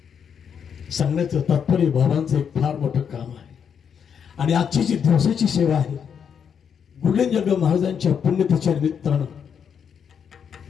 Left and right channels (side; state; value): right; quieter; 7.5 dB